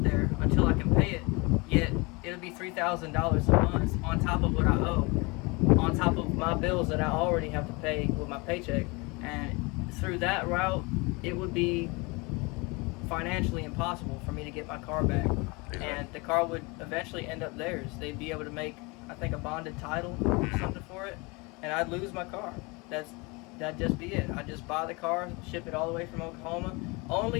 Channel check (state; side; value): quieter; right; 27.2 dB